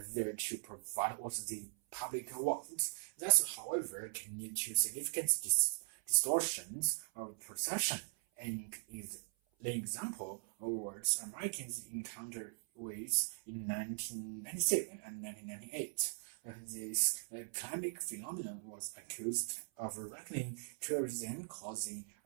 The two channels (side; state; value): left; silent; 51 dB below the other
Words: there to provide what the public wants. That, however, can lead to significant distortions of perception. And is the example of words Americans encountered with in 1997 and 1998. This climate phenomenon was accused of weakening tourism, causing